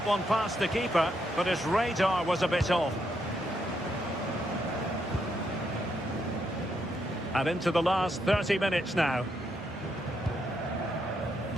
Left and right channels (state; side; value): normal; both; correlation 0.78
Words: one past the keeper, but his radar was a bit off. And into the last 30 minutes now.